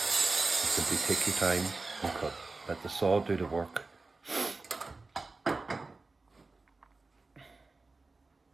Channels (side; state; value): left; quieter; 3.6 dB